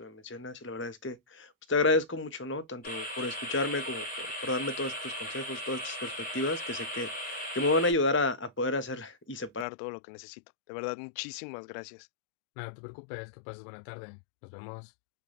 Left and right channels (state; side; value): drops out; right; at 9.7 s